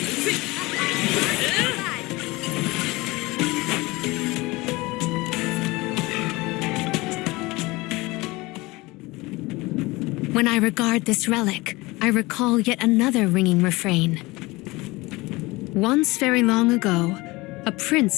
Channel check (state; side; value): quieter; right; 22.2 dB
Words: When I regard this relic, I recall yet another ringing refrain. Once very long ago, a prince